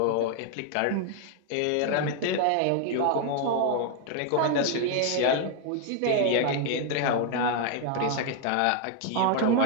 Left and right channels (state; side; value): different; both; correlation 0.00